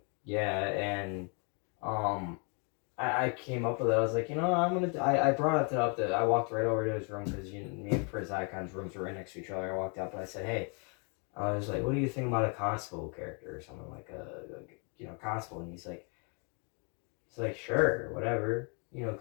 Yeah, and I I came up with it. I was like, I brought it up. I walked right over to his room because me and Prince Icon's rooms were right next to each other. I walked up and I said, hey, I was like, what do you think about a constable character or something like constable? And he's like, sure, whatever,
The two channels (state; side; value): quieter; right; 36.9 dB